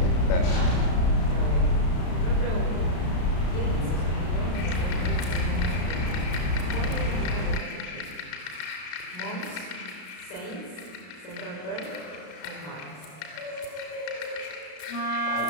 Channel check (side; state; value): right; late; 33 ms